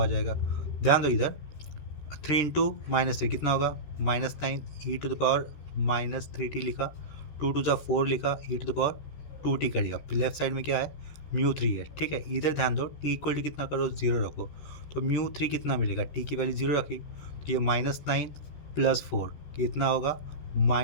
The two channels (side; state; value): right; late; 13 ms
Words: जाएगा। ध्यान दो इधर, 3 × -3 कितना होगा, -9, e⁻³ लिखा, 2 × 4 4 लिखा, e⁻² कर दिया। लेफ्ट साइड में क्या है, μ3 है, ठीक है। इधर ध्यान दो, t इक्वल टू कितना करो, 0 रखो, तो μ3 कितना मिलेगा, t की वैल्यू 0 रखी, तो ये -9 + 4 कितना होगा,